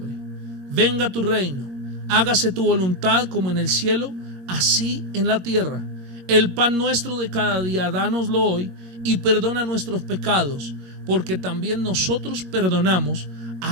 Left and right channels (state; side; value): late; left; 22 ms